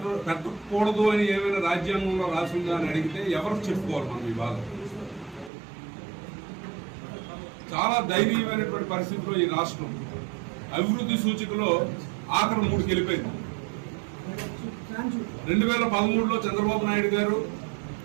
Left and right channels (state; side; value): drops out; left; at 5.5 s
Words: పెట్టకూడదు అని ఏమైనా రాజ్యాంగంలో రాసిందా అని అడిగితే ఎవరు చెప్పుకోవాలి మనం ఈ బాధ. చాలా దయనీయమైనటువంటి పరిస్థితిలో ఈ రాష్ట్రం అభివృద్ధి సూచికలో ఆఖరి 3కి వెళ్ళిపోయింది. 2013లో చంద్రబాబు నాయుడు గారు